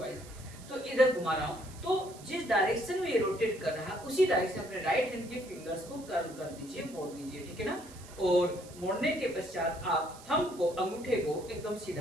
तो इधर घुमा रहा हूँ, तो जिस डायरेक्शन में ये रोटेट कर रहा है उसी डायरेक्शन अपने राइट हैंड के फिंगर्स को कर्ल कर दीजिए, मोड़ दीजिए। ठीक है ना, और मोड़ने के पश्चात आप थंब को, अंगूठे को एकदम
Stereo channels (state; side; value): noise; right; hiss, 19 dB below the sound